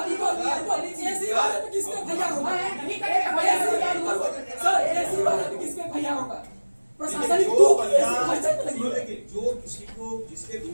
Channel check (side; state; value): both; inverted; correlation -1.00